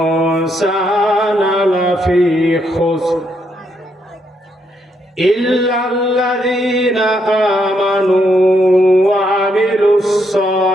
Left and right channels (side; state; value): both; normal; correlation 0.76